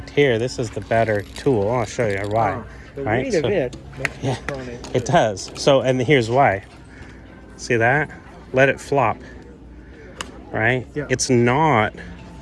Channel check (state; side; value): identical; both; correlation 1.00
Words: here this is the better tool. I'll show you why. The weight of it makes it pronate. It does. So, and here's why. See that? Let it flop. Right? Yeah. It's not.